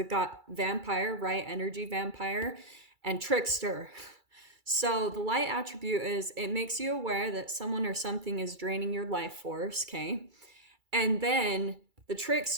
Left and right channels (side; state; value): left; late; 2.3 ms